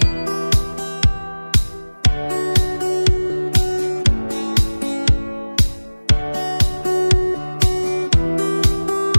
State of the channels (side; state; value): both; inverted; correlation -1.00